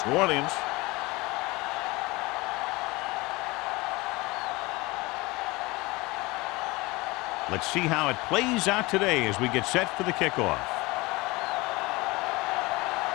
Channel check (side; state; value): right; quieter; 22.9 dB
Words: New Orleans. Let's see how it plays out today as we get set for the kickoff.